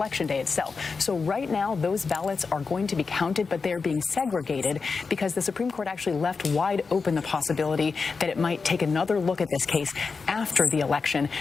day itself. So right now those ballots are going to be counted, but they're I being want to talk to segregated someone because the Supreme Court actually left wide open who, the like, possibility that it might take another look at this actually case thinks after the election,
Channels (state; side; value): quieter; right; 4.8 dB